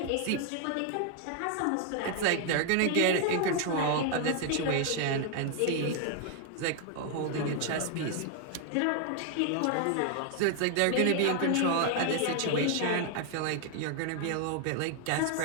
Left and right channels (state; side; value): different; both; correlation 0.00